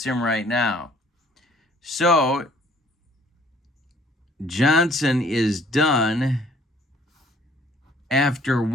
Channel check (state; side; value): normal; both; correlation 0.58